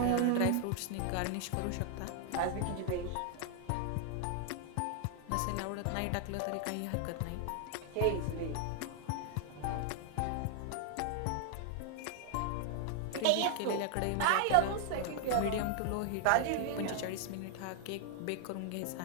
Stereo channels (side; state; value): both; different; correlation 0.00